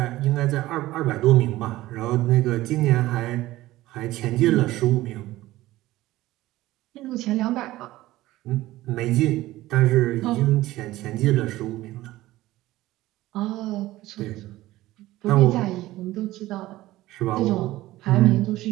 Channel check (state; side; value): quieter; left; 16.8 dB